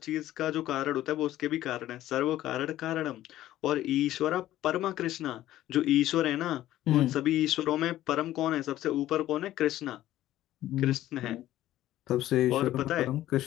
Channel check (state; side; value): quieter; right; 14.0 dB